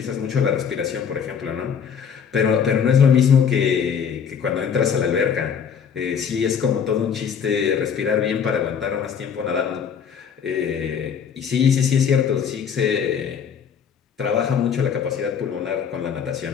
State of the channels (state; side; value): quieter; right; 7.3 dB